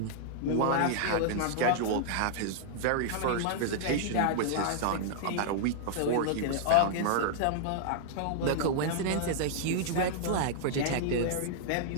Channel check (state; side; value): different; both; correlation -0.01